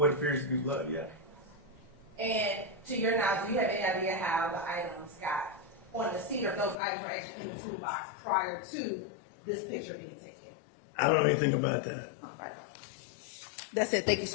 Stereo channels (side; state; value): right; drops out; at 6.8 s